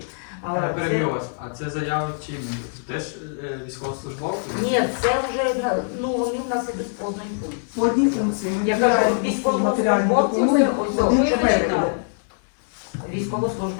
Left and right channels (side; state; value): right; silent; 61 dB below the other